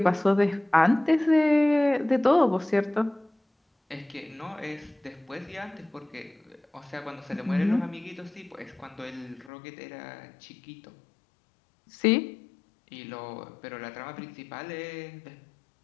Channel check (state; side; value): drops out; right; at 9.5 s